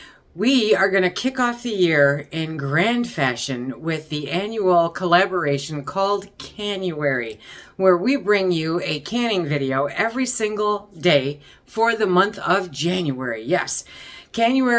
We are going to kick off the year in grand fashion with the annual collaboration called Canuary, where we bring you a canning video every single day for the month of January. Yes,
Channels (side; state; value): both; identical; correlation 1.00